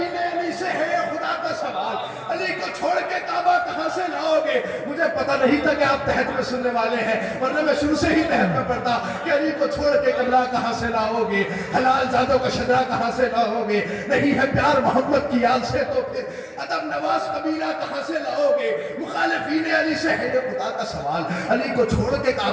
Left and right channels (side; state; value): both; identical; correlation 1.00